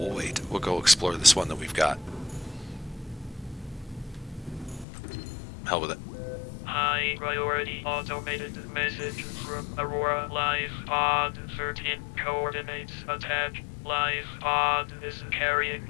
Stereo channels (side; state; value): right; drops out; at 4.9 s